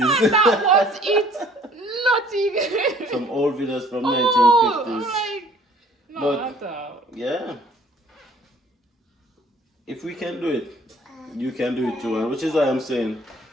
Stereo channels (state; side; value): normal; both; correlation 0.55